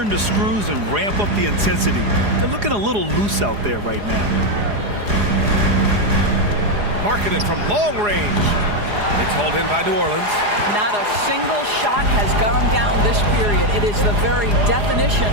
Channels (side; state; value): left; late; 4.8 ms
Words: the screws and ramp up the intensity. They're looking a little loose out there right now. Marketed from long range. It's hauled in by New Orleans. Not a single shot has gone down this period. It is the very definition